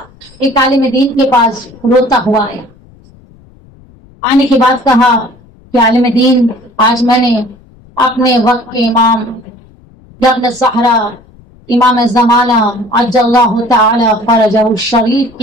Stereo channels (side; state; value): left; noise; rumble, 27 dB below the sound